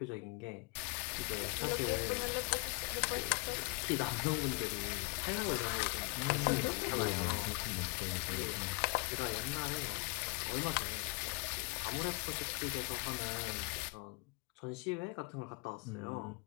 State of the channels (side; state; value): right; quieter; 29.2 dB